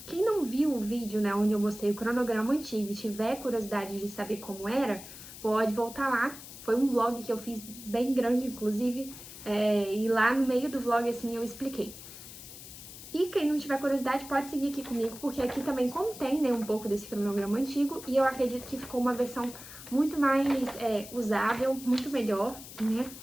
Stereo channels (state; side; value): noise; left; hiss, 14 dB below the sound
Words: não viu o vídeo, né, onde eu mostrei o cronograma antigo e tiver curiosidade de saber como era, pode voltar lá. Foi um vlog que eu fiz bem grande, inclusive, e lá no meio do vlog, assim, eu expliquei. E quem não tiver curiosidade pode seguir aqui comigo, porque aqui também contém, né, um pouco desse cronograma antigo, e eu acredito que ficou uma versão muito mais usável, muito melhor, né?